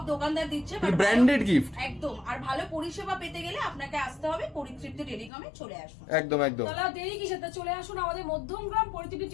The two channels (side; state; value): right; drops out; at 5.3 s